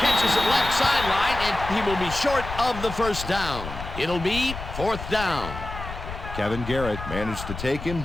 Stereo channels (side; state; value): left; noise; rumble, 9 dB below the sound